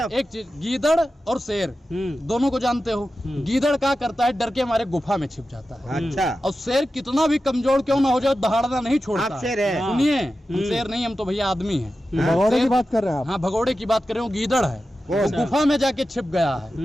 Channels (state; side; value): normal; both; correlation 0.92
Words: एक चीज, गीदड़ और शेर दोनों को जानते हो। गीदड़ क्या करता है? डर के हमारे गुफा में छिप जाता है। अच्छा, और शेर कितना भी कमजोर क्यों ना हो जाए, दहाड़ना नहीं छोड़ता। आप शेर है। सुनिए, हम शेर नहीं, हम तो भैया आदमी हैं। भगौड़े की शेर- बात कर रहे हैं आप। हाँ, भगोड़े की बात कर रहे हो, गीदड़ है, वो गुफा में जाके छिप गया